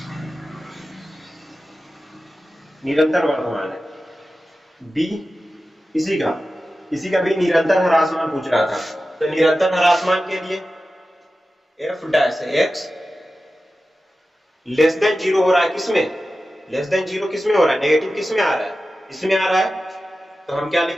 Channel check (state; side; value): normal; both; correlation 0.94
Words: निरंतर वर्धमान है। b इसी का भी निरंतर ह्रासमान पूछ रहा था, तो निरंतर ह्रासमान के लिए f' <0 हो रहा है, किसमें <0 किसमें हो रहा है, नेगेटिव किसमें आ रहा है, इसमें आ रहा है, तो हम क्या